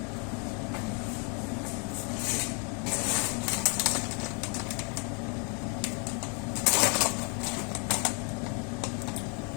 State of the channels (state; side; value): quieter; right; 36.4 dB